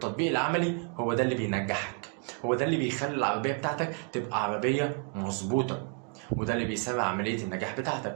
العملي هو ده اللي بينجحك، هو ده اللي بيخلي العربية بتاعتك تبقى عربية مظبوطة، وده اللي بيسرع عملية النجاح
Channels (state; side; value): quieter; left; 39.3 dB